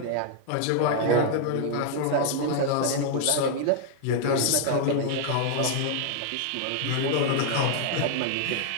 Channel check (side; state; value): both; different; correlation 0.00